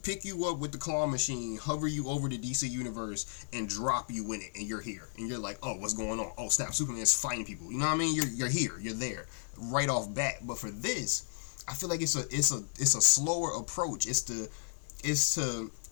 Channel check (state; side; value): silent; right; 55 dB below the other